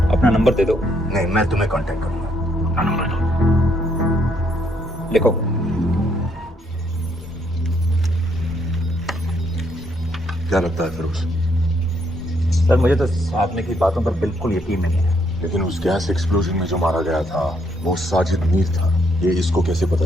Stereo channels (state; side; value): normal; both; correlation 0.72